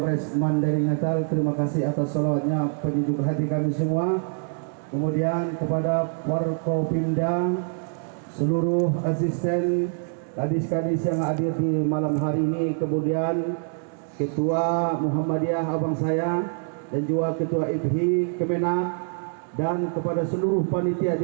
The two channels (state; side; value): silent; left; 59 dB below the other